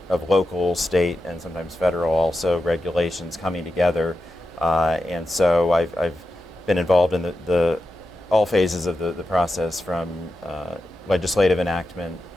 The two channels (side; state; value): both; normal; correlation 0.90